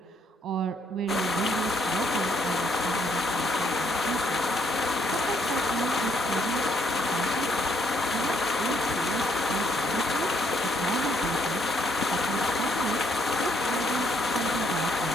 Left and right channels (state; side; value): normal; both; correlation 0.71